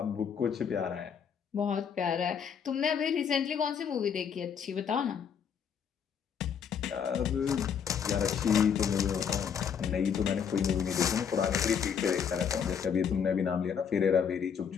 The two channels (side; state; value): right; quieter; 7.3 dB